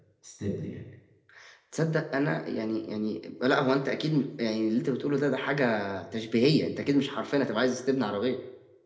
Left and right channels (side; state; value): both; identical; correlation 1.00